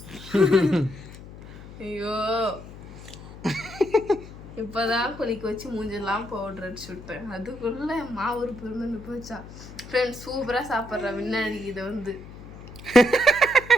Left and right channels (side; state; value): left; noise; hum, 15 dB below the sound